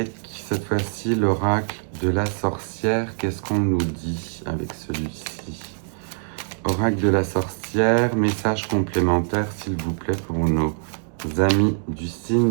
cette fois-ci, l'oracle de la sorcière, qu'est-ce qu'on nous dit avec celui-ci? Oracle de la sorcière, message complémentaire, s'il vous plaît, pour nos amis du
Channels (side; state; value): left; silent; digital silence